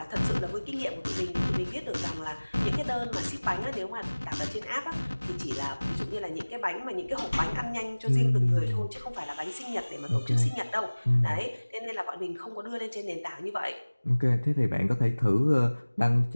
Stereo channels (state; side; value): inverted; both; correlation -1.00